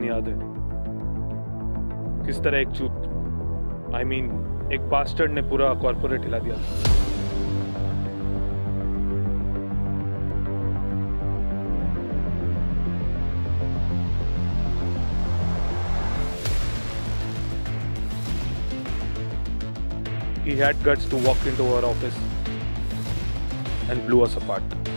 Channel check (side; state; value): both; inverted; correlation -1.00